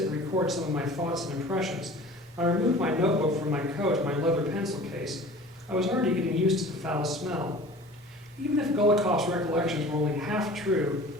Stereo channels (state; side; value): normal; both; correlation 0.43